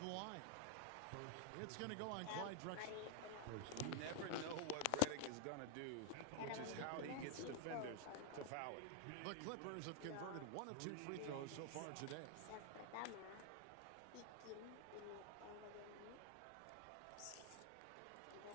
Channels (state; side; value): different; both; correlation 0.00